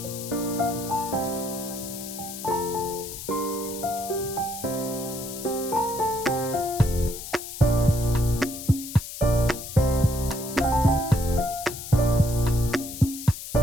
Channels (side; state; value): left; noise; hiss, 10 dB below the sound